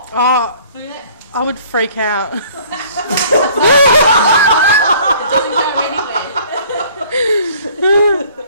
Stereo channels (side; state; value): both; inverted; correlation -0.54